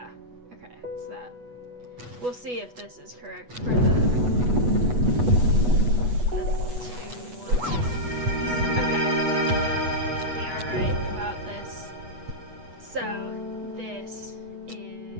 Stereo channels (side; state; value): left; late; 8.2 ms